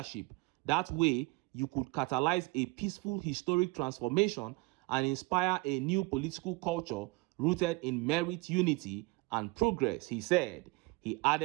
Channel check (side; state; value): left; quieter; 25.5 dB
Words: That way, you could catalyze a peaceful historic transformation and inspire a new political culture rooted in merit, unity, and progress, he said. He